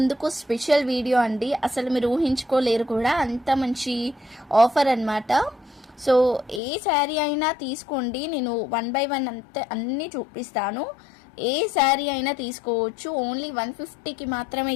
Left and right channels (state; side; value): drops out; right; at 6.6 s